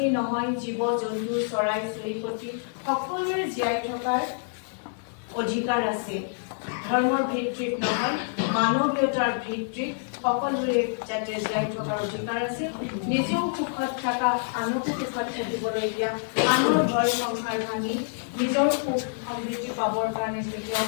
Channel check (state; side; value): silent; right; digital silence